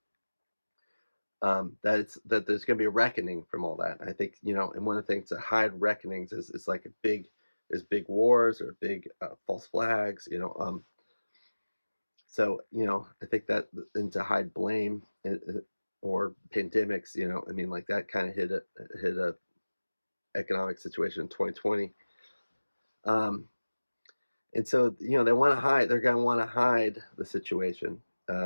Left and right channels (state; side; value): inverted; both; correlation -1.00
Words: That there's going to be a reckoning from all that. I think, and one of the things to hide reckonings is like big wars or big false flags. So I think that, and to hide blame, or pandemics. I mean, like that kind of hit a economic situation in 2020. And so they want to hide. They're going to want to hide the situation.